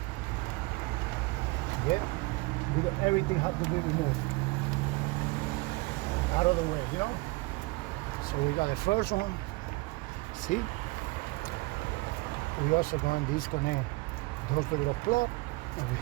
Yeah, because everything has to be removed out of the way, you know. So we got the first one. See, we also going to disconnect those little plug over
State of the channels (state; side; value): quieter; left; 24.3 dB